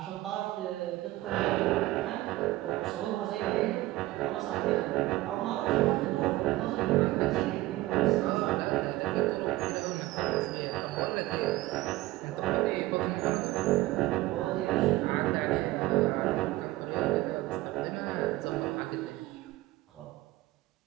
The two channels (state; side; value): quieter; left; 17.6 dB